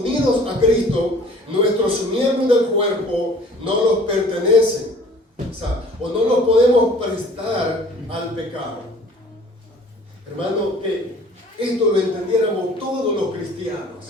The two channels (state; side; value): normal; both; correlation 0.51